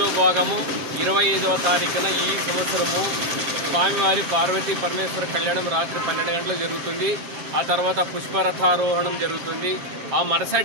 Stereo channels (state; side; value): late; left; 7.4 ms